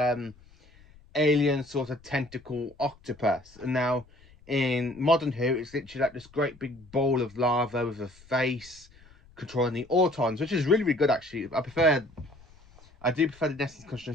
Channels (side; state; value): left; noise; rumble, 26 dB below the sound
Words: alien sort of tentacle octopus, and now in Modern Who, it's literally like this great big ball of lava with a face controlling the Autons, which is really, really good actually. I do prefer the Nesting